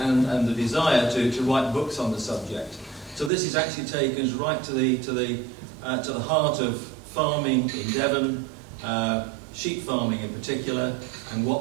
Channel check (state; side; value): drops out; left; at 3.3 s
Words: the desire to write books on the subject. So this is actually taken us right to the heart of farming in Devon, sheep farming in particular, and